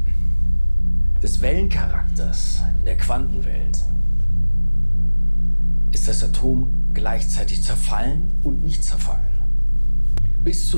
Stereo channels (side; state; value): both; inverted; correlation -1.00